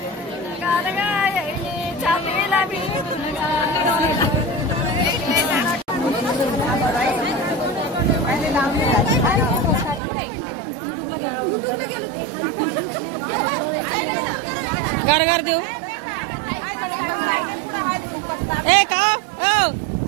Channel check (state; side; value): drops out; left; at 10.0 s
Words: घर घर देऊ ए का ओ